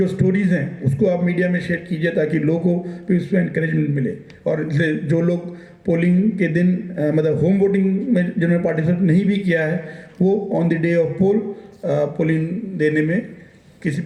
स्टोरीज़ हैं उसको आप मीडिया में शेयर कीजिए ताकि लोगों को भी उसमें इंकरेजमेंट मिले। और इसलिए जो लोग पोलिंग के दिन मतलब होम वोटिंग में जिन्होंने पार्टिसिपेट नहीं भी किया है वो on the day of poll polling देने में किसी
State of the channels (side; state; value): both; identical; correlation 1.00